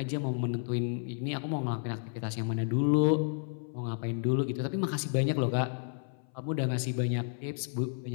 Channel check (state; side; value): silent; right; 57 dB below the other